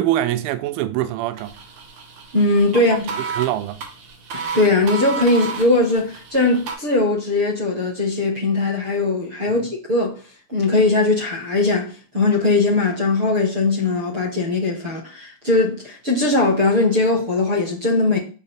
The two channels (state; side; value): late; left; 6.7 ms